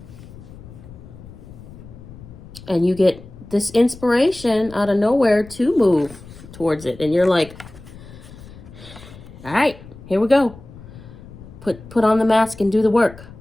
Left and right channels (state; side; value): noise; left; rumble, 18 dB below the sound